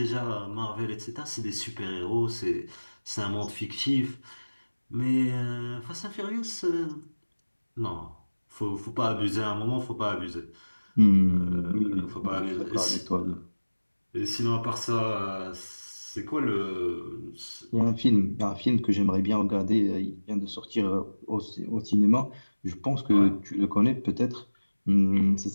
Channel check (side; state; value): both; inverted; correlation -1.00